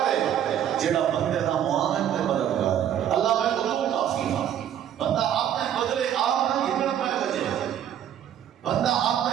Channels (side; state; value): left; quieter; 10.2 dB